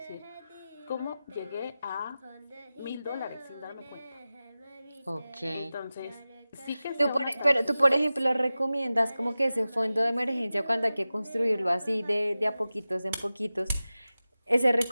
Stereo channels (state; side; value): inverted; both; correlation -0.96